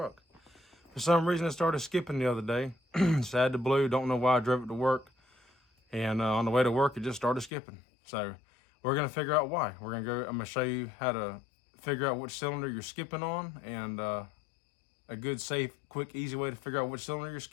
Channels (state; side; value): drops out; right; at 7.5 s